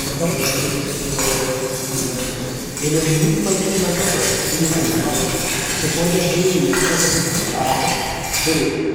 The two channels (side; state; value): both; identical; correlation 1.00